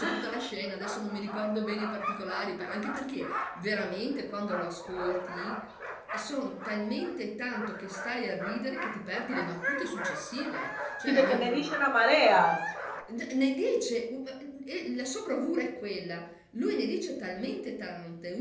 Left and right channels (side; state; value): both; identical; correlation 1.00